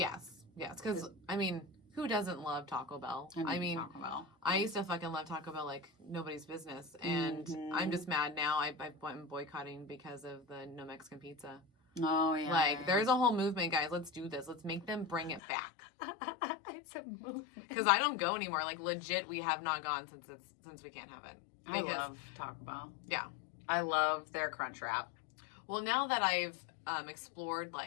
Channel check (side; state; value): right; drops out; at 15.4 s